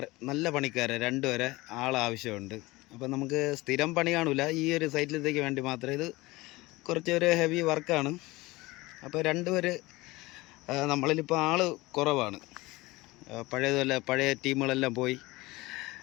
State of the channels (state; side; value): quieter; right; 21.0 dB